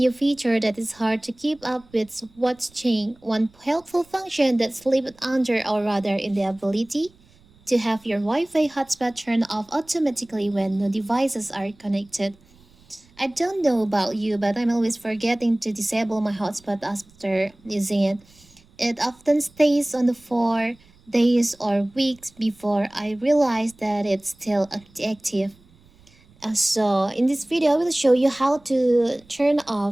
features that it's hard to keep up with what's changed. One helpful function that's slipped under or rather in the ability to have your Wi-Fi hotspot turn off automatically when no devices are connected. I don't know about you, but I'm always forgetting to disable my hotspot after using it. It often stays on for days or weeks before I realize that it's still active. So in this video, I will show you how to turn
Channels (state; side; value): noise; right; rumble, 29 dB below the sound